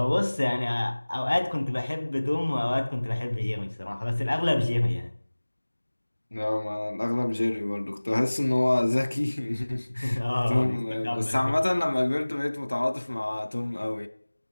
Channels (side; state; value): both; inverted; correlation -1.00